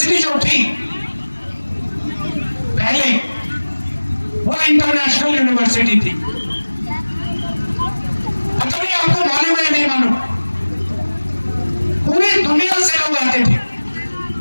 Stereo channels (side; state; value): both; inverted; correlation -1.00